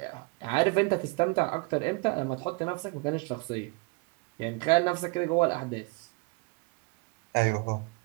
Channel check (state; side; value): quieter; left; 28.8 dB